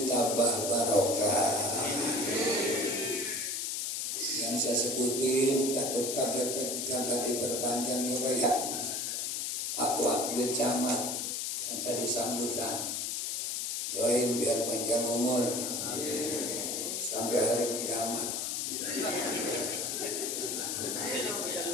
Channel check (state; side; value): noise; left; hiss, 1 dB below the sound